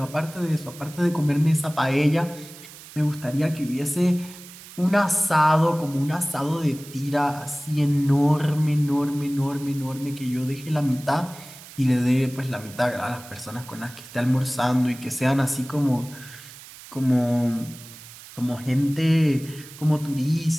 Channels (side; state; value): right; noise; hiss, 17 dB below the sound